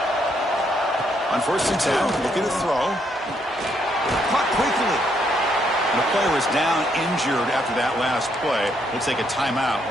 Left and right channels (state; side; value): normal; both; correlation 0.73